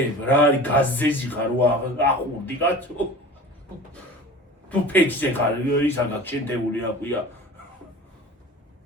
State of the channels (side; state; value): both; normal; correlation 0.38